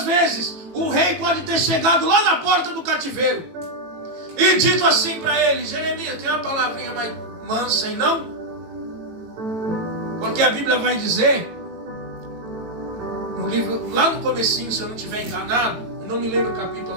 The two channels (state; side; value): late; left; 18 ms